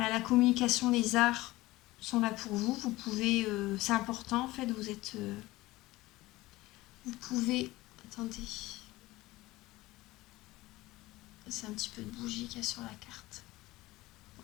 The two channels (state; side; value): quieter; right; 18.9 dB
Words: la communication, les arts sont là pour vous. Vous pouvez... c'est important, en fait. Vous êtes... vous pouvez... Attendez. C'est un petit peu de bougie qu'il y a sur la carte.